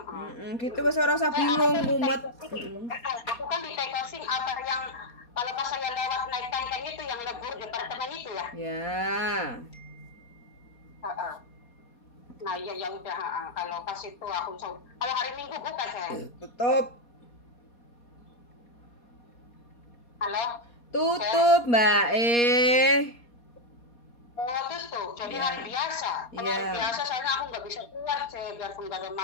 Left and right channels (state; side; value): late; right; 4.2 ms